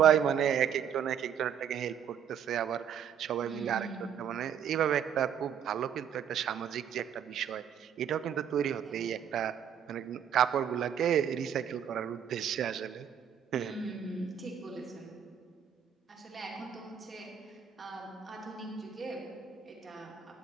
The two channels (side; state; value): left; quieter; 8.5 dB